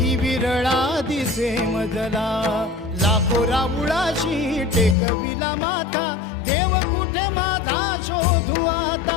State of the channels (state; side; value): drops out; right; at 5.0 s